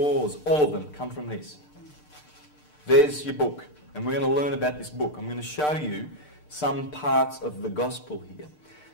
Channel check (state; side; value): late; right; 6.7 ms